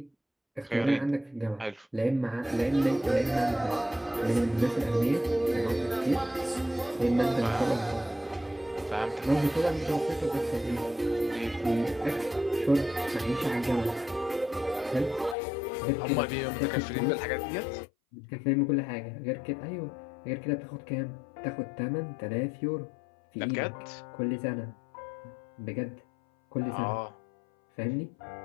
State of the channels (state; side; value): drops out; right; at 15.4 s